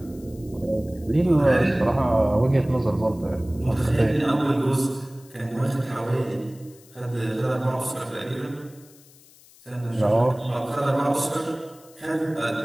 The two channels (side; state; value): left; noise; hiss, 25 dB below the sound